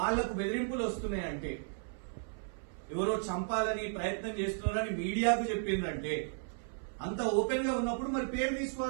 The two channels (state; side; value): silent; left; 55 dB below the other